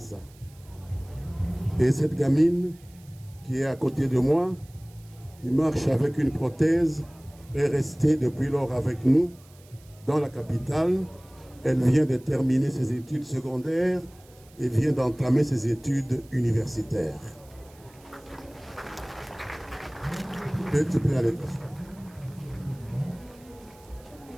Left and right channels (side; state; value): right; noise; hiss, 27 dB below the sound